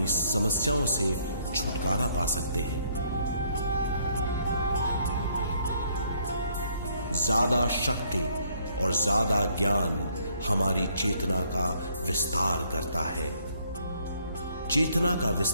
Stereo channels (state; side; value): inverted; both; correlation -0.67